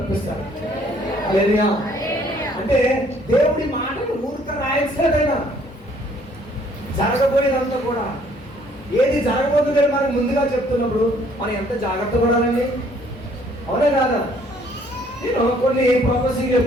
హల్లెలూయా. అంటే దేవుడి మాటలు ఊరిక రాయట్లేదైనా జరగబోయేదంతా కూడా ఏది జరగబోతుందని మనకు ముందుగా చెప్తున్నప్పుడు మనం ఎంత జాగ్రత్త పడాలండి. అవునే కాదా? నేను కొన్ని ప్రొఫెసింగ్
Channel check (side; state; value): both; normal; correlation 0.61